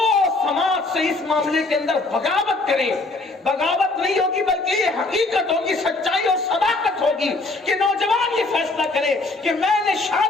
سماج سے اس معاملے کے اندر بغاوت کریں۔ بغاوت نہیں ہوگی بلکہ یہ حقیقت ہوگی، سچائی اور صداقت ہوگی کہ نوجوان یہ فیصلہ کرے کہ میں نے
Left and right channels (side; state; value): right; quieter; 3.3 dB